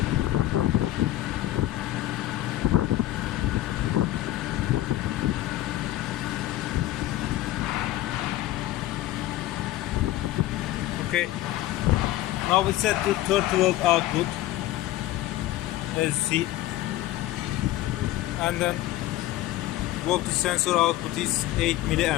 Okay, now we set the 30 volt output, as you see, and then voltage sensor output is 8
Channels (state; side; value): quieter; right; 15.3 dB